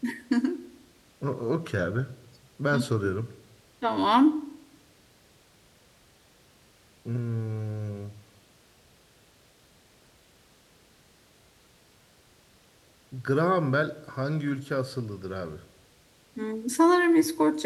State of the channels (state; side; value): identical; both; correlation 1.00